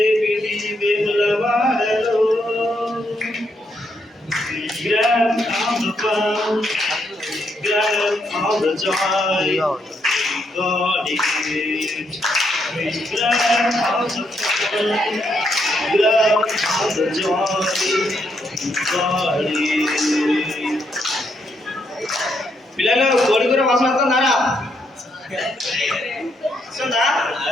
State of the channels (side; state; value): both; normal; correlation 0.77